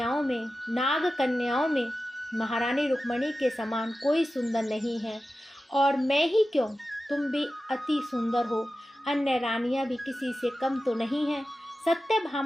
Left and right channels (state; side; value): normal; both; correlation 0.94